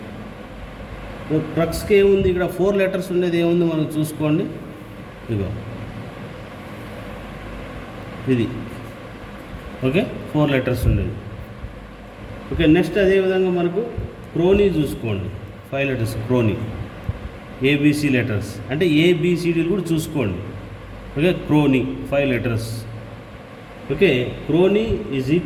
ప్రక్స్కి ఏముంది ఇక్కడ? 4 లెటర్స్ ఉండేది ఏముంది మనం చూసుకోండి. ఇదిగో ఇది. ఓకే, 4 లెటర్స్ ఉండేది. ఓకే, నెక్స్ట్ అదేవిధంగా మనకు క్రోనీ చూసుకోండి. 5 లెటర్స్ క్రోనీ. ఏబిసి లెటర్స్ అంటే ఏబిసిడీలు కూడా చూసుకోండి. Okay, crony 5 letters. Okay, crony is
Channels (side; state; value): both; identical; correlation 1.00